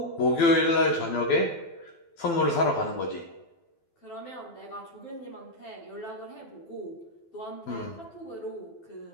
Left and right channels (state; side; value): late; right; 12 ms